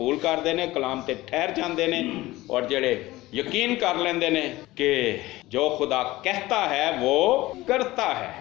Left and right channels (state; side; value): quieter; right; 18.3 dB